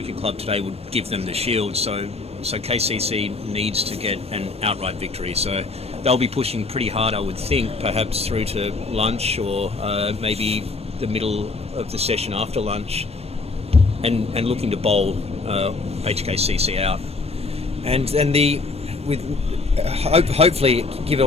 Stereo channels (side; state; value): right; quieter; 3.7 dB